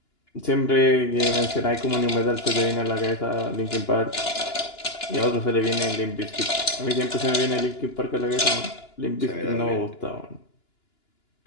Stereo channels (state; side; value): late; right; 2.9 ms